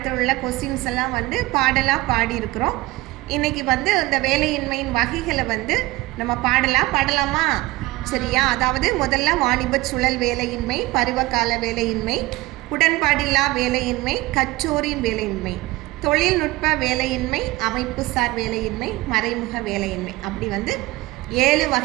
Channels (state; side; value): quieter; left; 20.1 dB